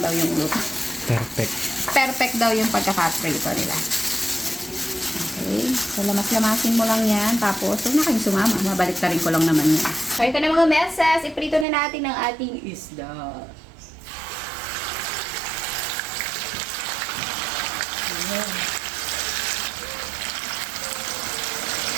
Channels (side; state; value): left; drops out; at 11.7 s